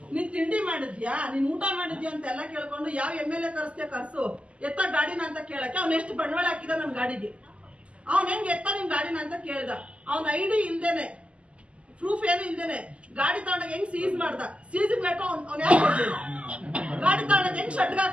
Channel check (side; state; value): left; late; 0.058 ms